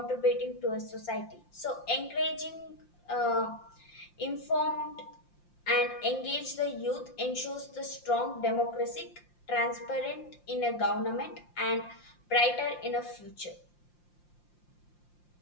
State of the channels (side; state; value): right; late; 5.7 ms